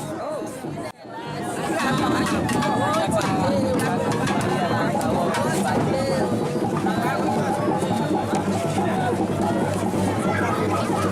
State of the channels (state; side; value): identical; both; correlation 1.00